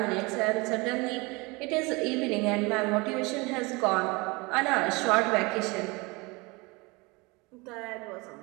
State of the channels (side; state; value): left; quieter; 25.9 dB